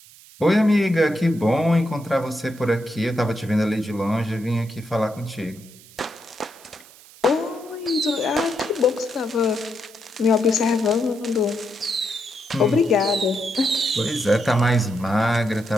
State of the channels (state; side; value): noise; right; hiss, 23 dB below the sound